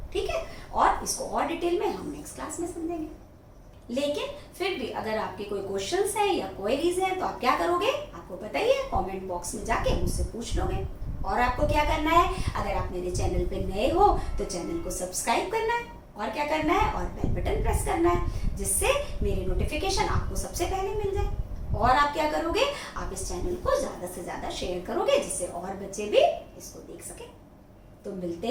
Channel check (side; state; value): both; identical; correlation 1.00